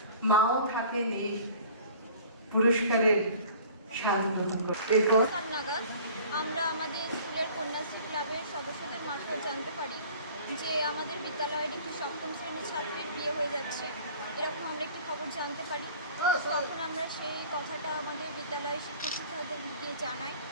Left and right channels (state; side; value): inverted; both; correlation -0.47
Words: মাও থাকে নেই পুরস্কারের স্বাদ গ্রহণ করে। আমরা আমাদের স্কুলের কন্যাশ্রী ক্লাবের সদস্যদের মারফত জানতে পারি যে আমাদের বিদ্যালয়ের একটি সপ্তম শ্রেণীর ছাত্রীর বিয়ে হয়ে যাচ্ছে, এরকম আমরা একটি খবর জানতে পারি। তখন আমরা সেই কথাটা আমাদের বিদ্যালয়ের শিক্ষক শিক্ষকদের গিয়ে জানাই